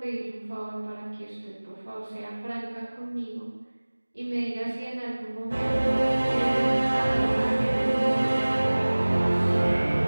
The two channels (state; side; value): inverted; both; correlation -1.00